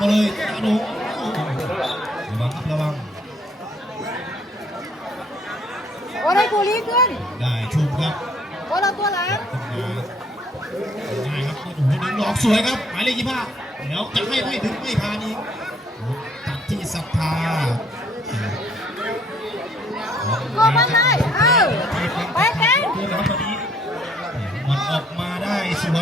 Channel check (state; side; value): normal; both; correlation 0.64